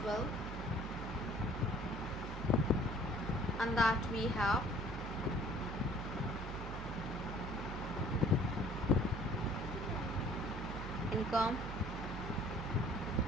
well. And that we have income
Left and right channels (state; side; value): noise; right; hum, 7 dB below the sound